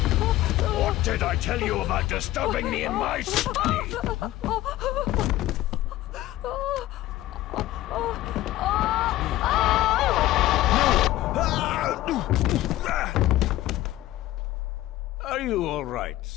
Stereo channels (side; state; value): right; quieter; 15.4 dB